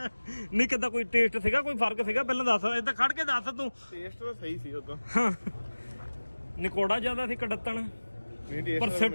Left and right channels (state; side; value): inverted; both; correlation -1.00